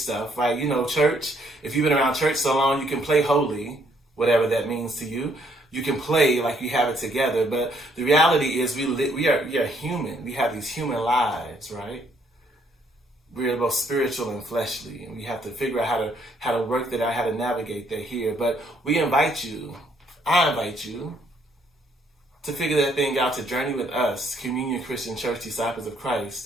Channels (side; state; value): both; normal; correlation 0.68